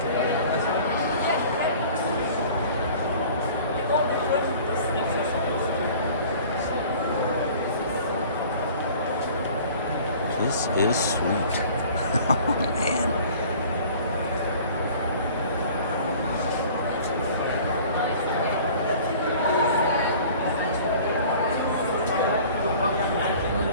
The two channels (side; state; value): both; inverted; correlation -0.47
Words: This is sweet. Oh, man.